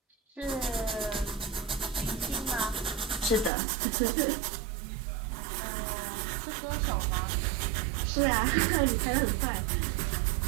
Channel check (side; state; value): left; drops out; at 3.5 s